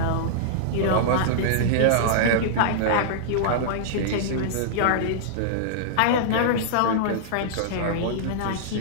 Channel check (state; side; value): different; both; correlation -0.02